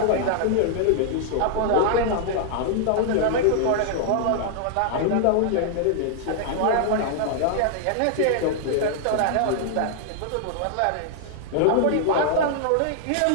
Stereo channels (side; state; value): both; different; correlation -0.01